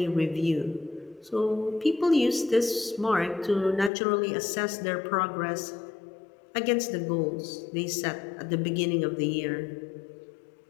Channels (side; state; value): right; drops out; at 3.9 s